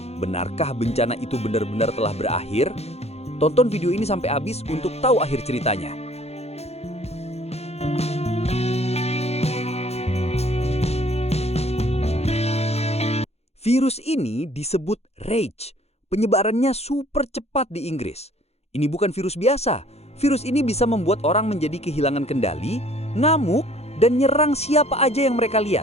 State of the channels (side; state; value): right; late; 0.31 ms